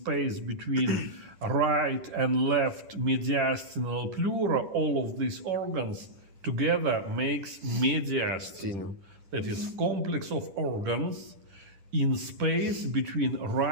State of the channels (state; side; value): late; left; 10 ms